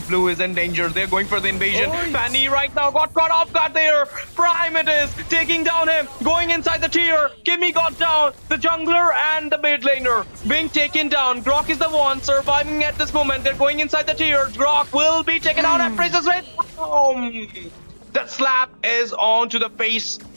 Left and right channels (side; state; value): both; inverted; correlation -1.00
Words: blue is in danger. They're going for the invasion. Fanny right now got caught off guard there. Prime it is taking down him, going inside the tier. Kimmy got down. The jungler and the mid laner being taken down. Grok is the one surviving at this moment. They're going inside the tier. Grok will be taken out and Princess Red. That slap is on to the face,